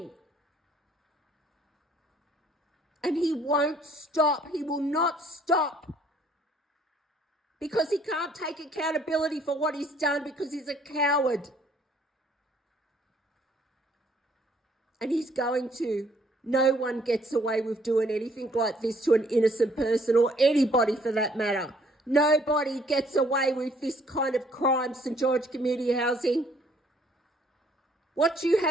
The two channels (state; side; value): normal; both; correlation 0.63